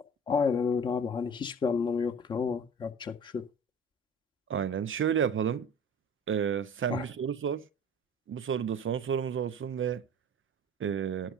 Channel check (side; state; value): both; normal; correlation 0.40